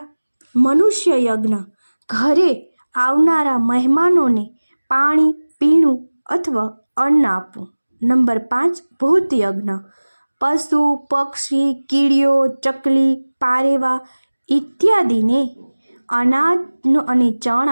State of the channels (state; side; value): inverted; both; correlation -1.00